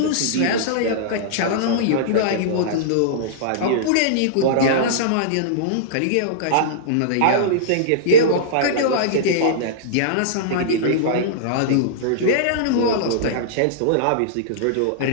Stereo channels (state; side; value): different; both; correlation -0.03